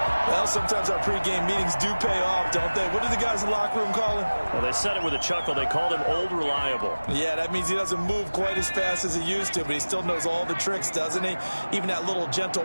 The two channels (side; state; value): both; inverted; correlation -1.00